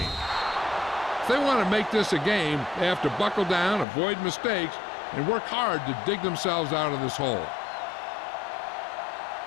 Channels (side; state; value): right; drops out; at 3.9 s